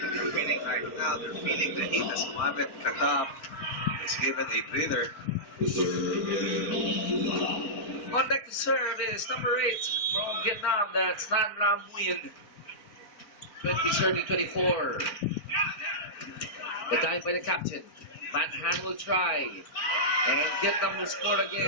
they're feeling right now. They're feeling the heat as Mohamed Khattab is given a breather. On deck to serve is number 8 from Vietnam. That's Tran Lam Nguyen. 20-30-24. The time by the captain. Van Han will try. And Vietnam will score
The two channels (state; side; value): late; right; 4.3 ms